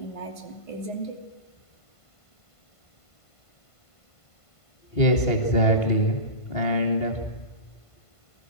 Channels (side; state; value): right; late; 1.5 ms